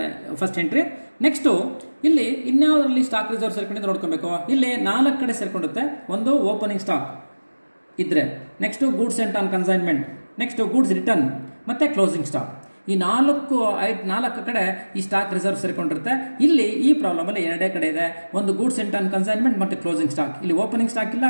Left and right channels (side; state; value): both; inverted; correlation -1.00